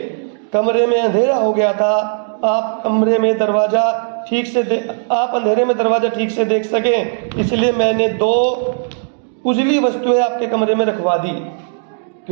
कमरे में अंधेरा हो गया था। आप अंधेरे में दरवाजा ठीक से देख सकें, इसलिए मैंने दो उजली वस्तुएं आपके कमरे में रखवा दी।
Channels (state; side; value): silent; left; digital silence